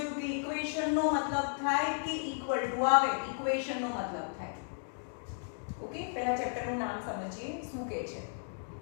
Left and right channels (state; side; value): silent; right; digital silence